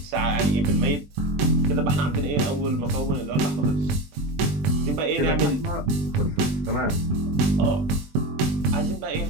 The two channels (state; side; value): late; left; 20 ms